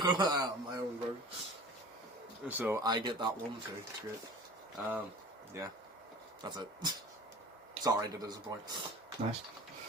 go. I have my own version. So I get that one too. It's great. Yeah, that's it. Sorry to disappoint. Nice.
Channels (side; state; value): both; normal; correlation 0.41